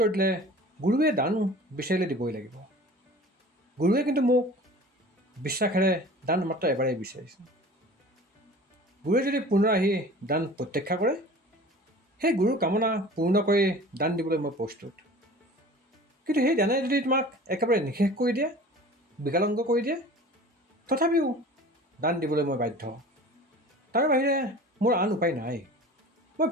দিলে, গুৰুৱে দান বিচাৰিলে দিবই লাগিব। গুৰুৱে কিন্তু মোক বিশ্বাসেৰে দান মাত্ৰ এবাৰেই বিচাৰিছে। গুৰুৱে যদি পুনৰ আহি দান প্ৰত্যাখ্যা কৰে, সেই গুৰুৰ কামনা পূৰ্ণ কৰি দান দিবলৈ মই প্ৰস্তুত। কিন্তু সেই দানে যদি তোমাক একেবাৰে নিষেধ কৰি দিয়ে, বিকলাংগ কৰি দিয়ে, তথাপিও দান দিবলৈ মই বাধ্য। তাৰ বাহিৰে মোৰ আন উপায় নাই। মই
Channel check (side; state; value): both; normal; correlation 0.42